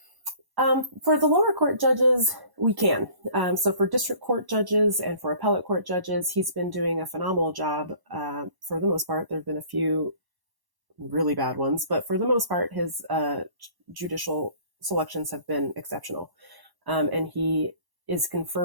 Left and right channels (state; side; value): late; left; 1.1 ms